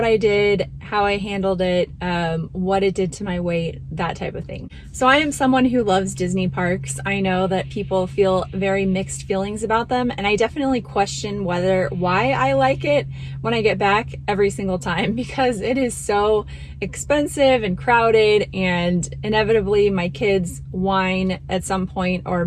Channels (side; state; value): both; identical; correlation 1.00